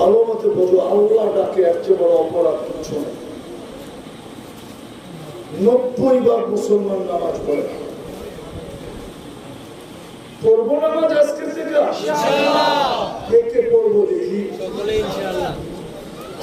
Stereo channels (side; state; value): both; identical; correlation 1.00